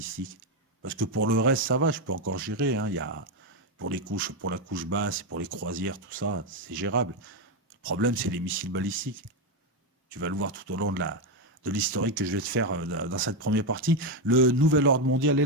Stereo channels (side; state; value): both; normal; correlation 0.07